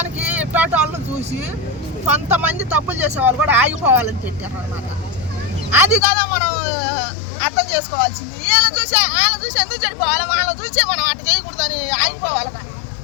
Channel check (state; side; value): drops out; right; at 6.0 s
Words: ఇట్లాంటి వాళ్ళని చూసి కొంతమంది తప్పులు చేసే వాళ్ళు కూడా ఆగిపోవాలని పెట్టారు అన్నమాట. అది కదా మనం అర్థం చేసుకోవాల్సింది. వీళ్ళని చూసి ఎందుకు చెడిపోవాలి, వాళ్ళని చూసి మనం అట్ట చేయకూడదని ఆగిపోవాలి కానీ